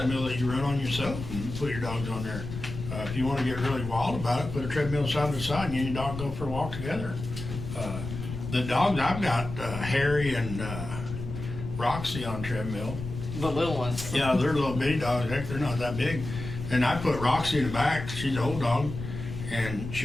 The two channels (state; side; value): noise; left; rumble, 8 dB below the sound